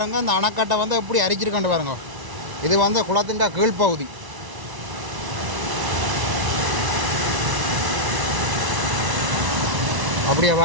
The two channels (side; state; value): left; late; 1.0 ms